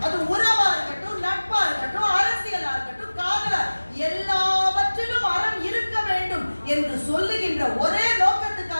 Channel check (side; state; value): both; inverted; correlation -1.00